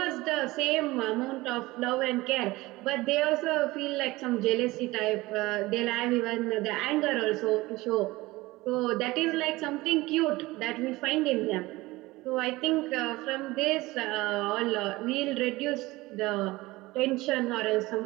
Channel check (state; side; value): quieter; left; 20.1 dB